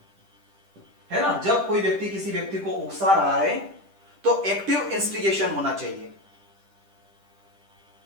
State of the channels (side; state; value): left; late; 10 ms